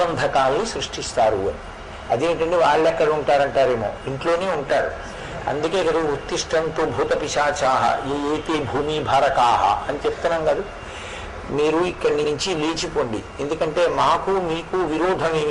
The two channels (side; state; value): both; identical; correlation 1.00